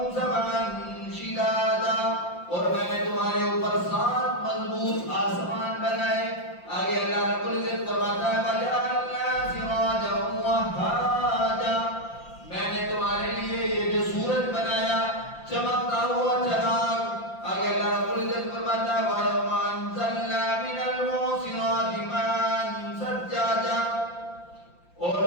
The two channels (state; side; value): late; right; 5.8 ms